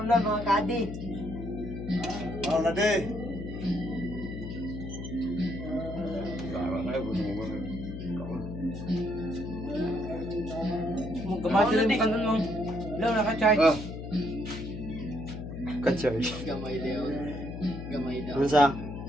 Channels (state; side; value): noise; left; hum, 8 dB below the sound